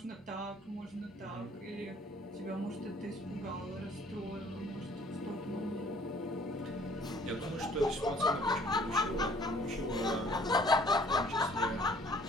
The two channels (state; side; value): normal; both; correlation 0.56